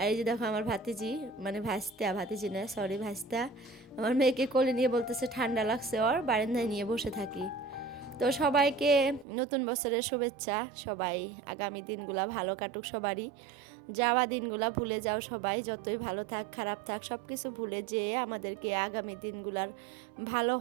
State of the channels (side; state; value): left; drops out; at 9.2 s